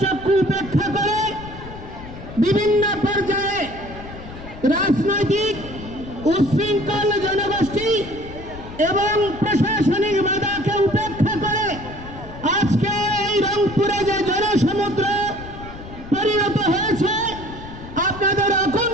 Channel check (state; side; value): noise; left; rumble, 14 dB below the sound